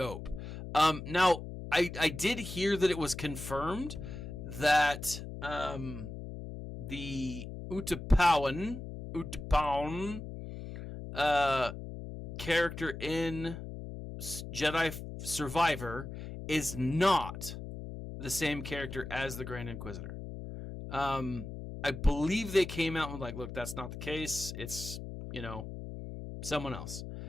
Now I did hear that it was confirmed that the Utapawan character in Jedi Survivor is not the same character as the Grand Inquisitor. I believe they came out and like, look, that's not the case. It's, someone else.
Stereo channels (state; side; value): noise; left; hum, 9 dB below the sound